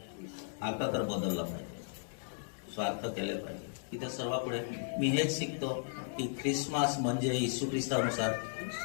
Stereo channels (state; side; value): silent; right; digital silence